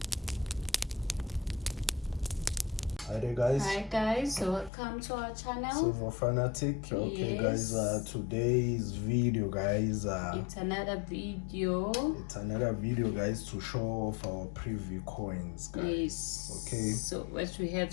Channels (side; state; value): right; drops out; at 4.7 s